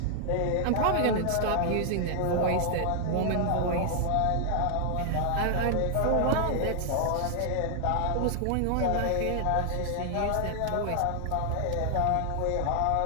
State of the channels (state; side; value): different; both; correlation 0.00